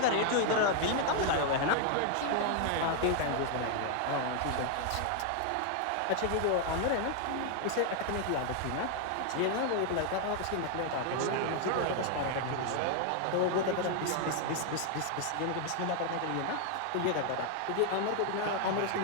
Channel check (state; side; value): different; both; correlation 0.00